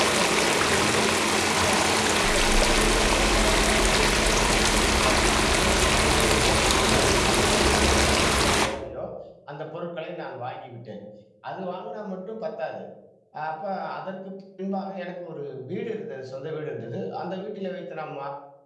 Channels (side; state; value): both; identical; correlation 1.00